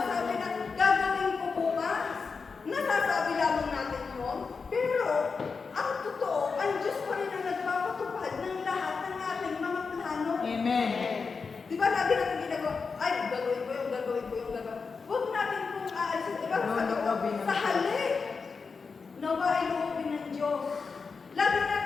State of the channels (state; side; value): quieter; right; 4.9 dB